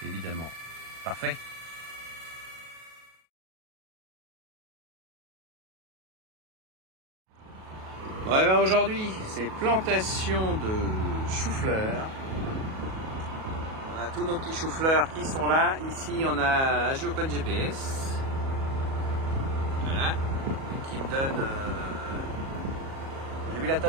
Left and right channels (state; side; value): late; left; 37 ms